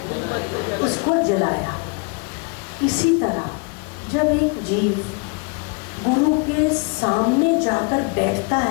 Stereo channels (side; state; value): right; quieter; 32.3 dB